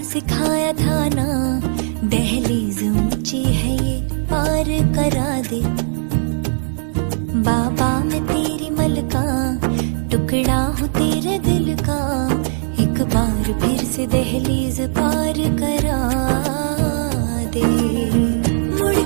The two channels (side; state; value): left; silent; digital silence